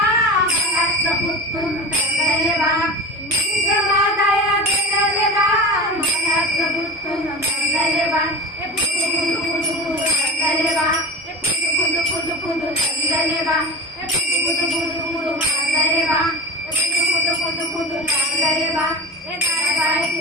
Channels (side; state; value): both; normal; correlation 0.31